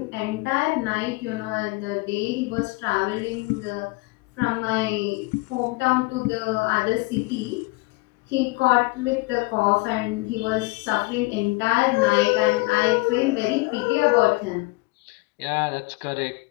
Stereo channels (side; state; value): right; quieter; 24.3 dB